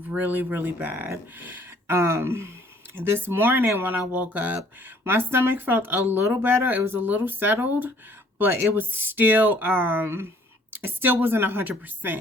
really, really bad. This morning when I woke up, my stomach felt a little better. It was a little settled, but it was still, it still wasn't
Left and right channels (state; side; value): normal; both; correlation 0.59